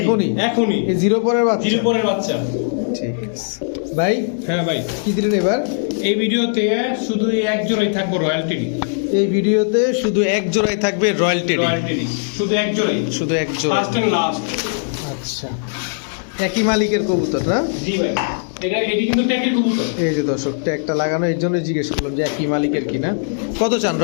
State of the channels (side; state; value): right; silent; 65 dB below the other